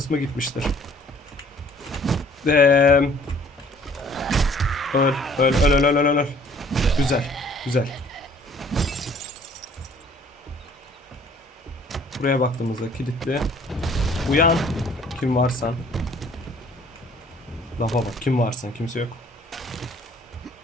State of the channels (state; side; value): normal; both; correlation 0.56